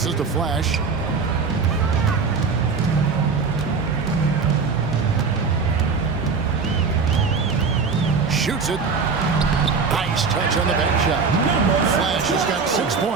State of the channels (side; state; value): left; quieter; 5.1 dB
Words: to Flash. Shoots it. Nice touch on the bank shot. Flash has got 6